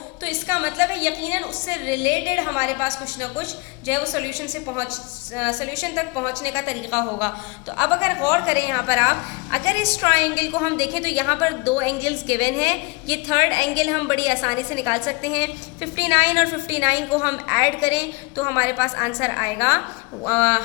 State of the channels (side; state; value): right; quieter; 27.4 dB